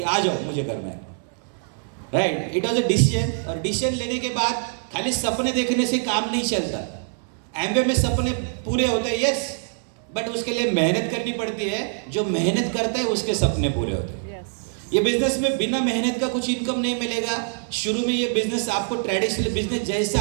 आ जाओ, मुझे करना है, right. It was a decision. और डिसीजन लेने के बाद खाली सपने देखने से काम नहीं चलता। एमवे में सपने पूरे होते हैं, यस, बट उसके लिए मेहनत करनी पड़ती है। जो मेहनत करता है उसके सपने पूरे होते हैं। ये बिजनेस में बिना मेहनत का कुछ इनकम नहीं मिलेगा। शुरू में ये बिजनेस आपको ट्रेडिशनल बिजनेस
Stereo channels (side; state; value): left; silent; 63 dB below the other